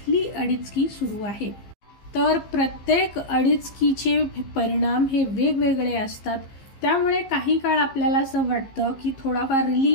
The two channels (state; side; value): late; right; 15 ms